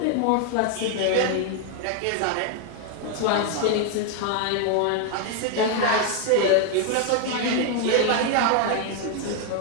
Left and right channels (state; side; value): different; both; correlation 0.01